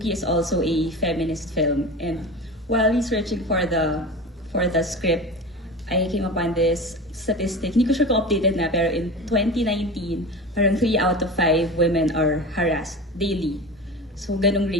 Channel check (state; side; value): normal; both; correlation 0.30